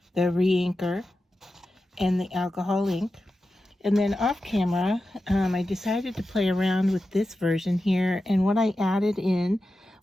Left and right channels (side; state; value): both; normal; correlation 0.92